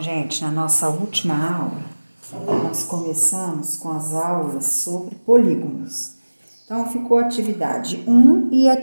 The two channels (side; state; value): both; inverted; correlation -1.00